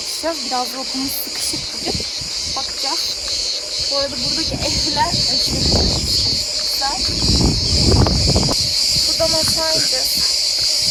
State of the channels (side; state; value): both; identical; correlation 1.00